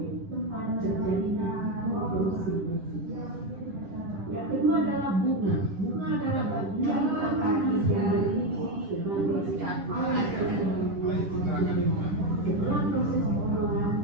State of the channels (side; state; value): left; late; 11 ms